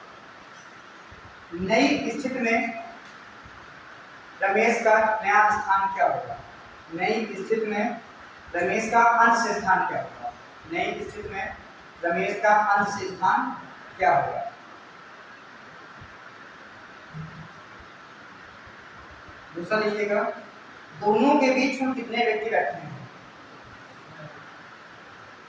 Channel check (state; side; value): identical; both; correlation 1.00